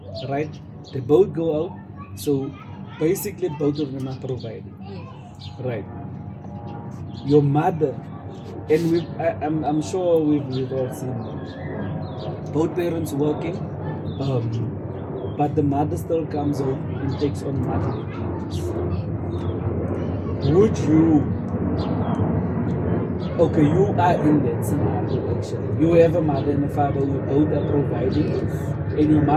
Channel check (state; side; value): identical; both; correlation 1.00